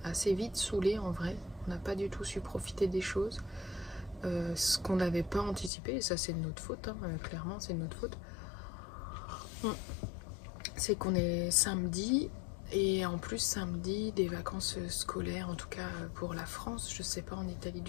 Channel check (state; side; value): drops out; right; at 5.7 s